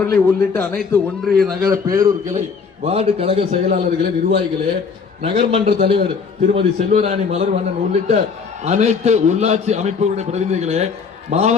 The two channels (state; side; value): quieter; right; 5.5 dB